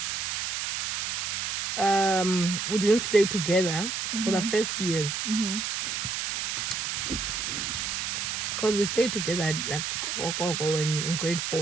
we didn't stay together for the first few years. Because we stayed together like in grade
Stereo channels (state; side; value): noise; right; hiss, 2 dB below the sound